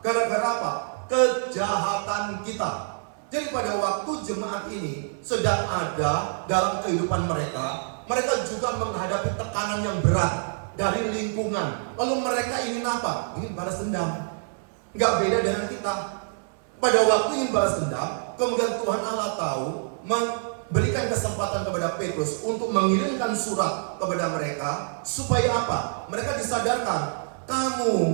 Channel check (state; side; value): silent; left; 61 dB below the other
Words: Gara-gara apa? Kejahatan kita. Jadi pada waktu jemaat ini sedang ada dalam kehidupan mereka, mereka juga menghadapi tekanan yang berat dari lingkungan. Lalu mereka ingin apa? Ingin balas dendam. Nggak beda dengan kita. Pada waktu ingin balas dendam, kemudian Tuhan Allah tahu, memberikan kesempatan kepada Petrus untuk mengirimkan surat kepada mereka. Supaya apa? Mereka disadarkan, kamu